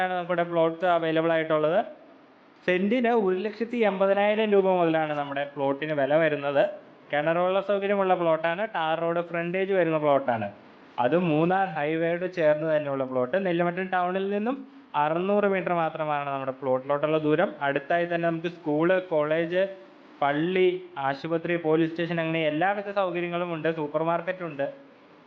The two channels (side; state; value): both; identical; correlation 1.00